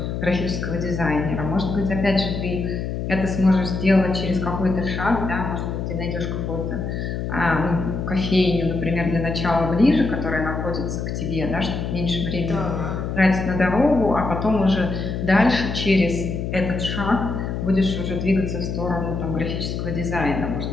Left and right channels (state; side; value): noise; left; hum, 3 dB below the sound